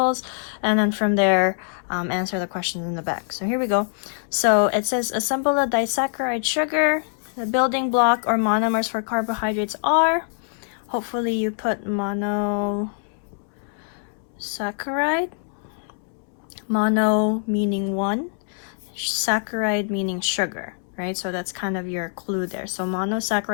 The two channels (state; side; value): silent; right; 63 dB below the other